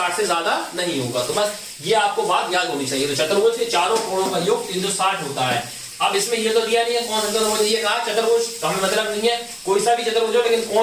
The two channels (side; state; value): both; identical; correlation 1.00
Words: से ज्यादा नहीं होगा। तो बस ये आपको बात याद होनी चाहिए। तो चतुर्भुज के चारों कोणों का योग 360 होता है। अब इसमें ये तो दिया नहीं है कौन सा चतुर्भुज, ये कहा चतुर्भुज, तो हमें मतलब नहीं है कोई सा भी चतुर्भुज हो, लेकिन